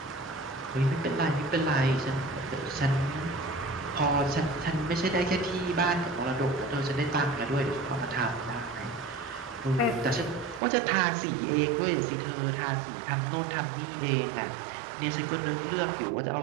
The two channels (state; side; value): drops out; left; at 10.6 s